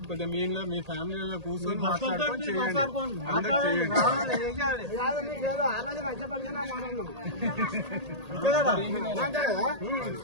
కొద్దిగా మీ ఇంట్లో మీ ఫ్యామిలీలో కూర్చొని మాట్లాడుకొని చేయండి, అందరూ చేయండి.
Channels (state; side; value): late; left; 1.8 ms